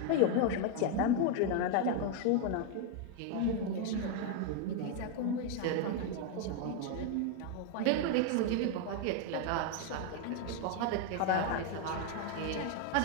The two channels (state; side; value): different; both; correlation 0.01